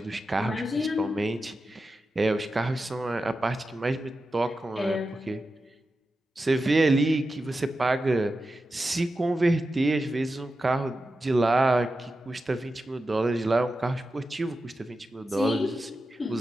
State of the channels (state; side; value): normal; both; correlation 0.91